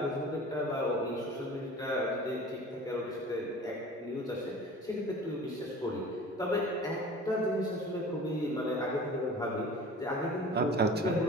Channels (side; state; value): both; normal; correlation 0.42